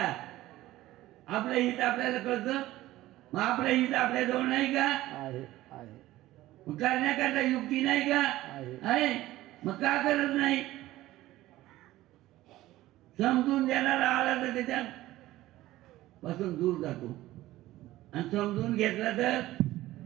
आपलं हित आपल्याला कळतं. मग आपलं हित आपल्या जवळ नाही का? आहे आहे मग करण्याकरता युक्ती नाही का? आहे. आहे. मग का करत नाही? समजून देणारा आला तर त्याच्या पासून दूर जातो, आणि समजून घेतला तर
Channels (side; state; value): left; quieter; 16.1 dB